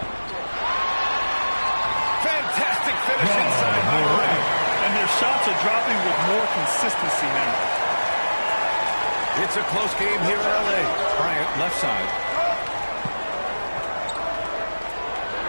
Fantastic finish inside by Morant. And their shots are dropping with more consistency now. It's a close game here in L.A. Bryant, left side.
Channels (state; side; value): inverted; both; correlation -1.00